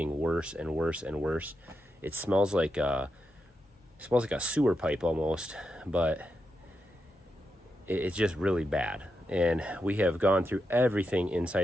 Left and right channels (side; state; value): both; normal; correlation 0.86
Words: worse and worse and worse. It smells like a sewer pipe almost, but it's just really bad. And we have gone through everything